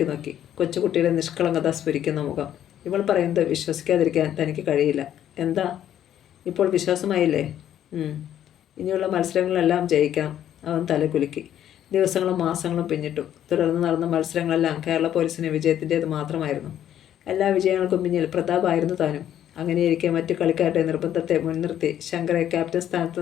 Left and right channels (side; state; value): right; quieter; 10.8 dB